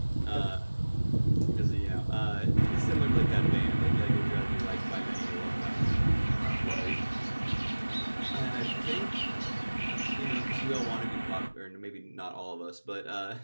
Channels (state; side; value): inverted; both; correlation -1.00